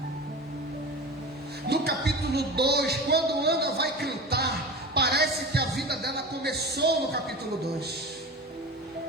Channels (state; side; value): normal; both; correlation 0.31